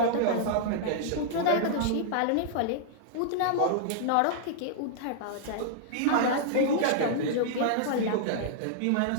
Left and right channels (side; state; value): both; different; correlation -0.01